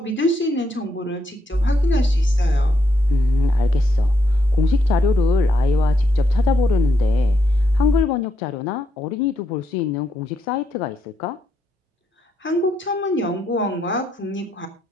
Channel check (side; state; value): both; normal; correlation 0.78